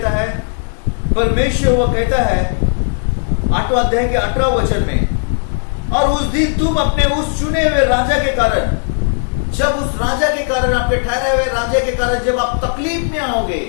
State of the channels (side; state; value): right; silent; digital silence